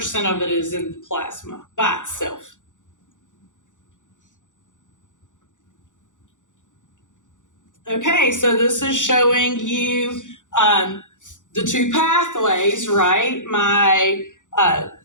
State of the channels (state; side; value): late; right; 0.86 ms